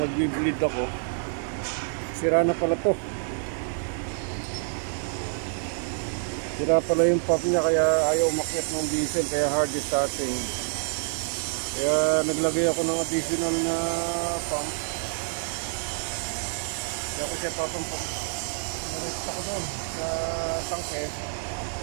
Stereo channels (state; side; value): silent; left; digital silence